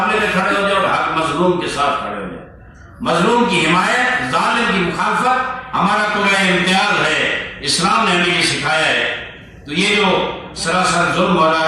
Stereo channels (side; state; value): both; identical; correlation 1.00